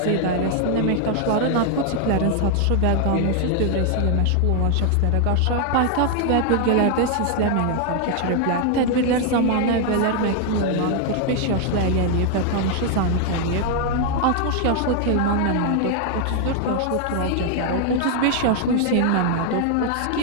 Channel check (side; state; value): both; different; correlation 0.00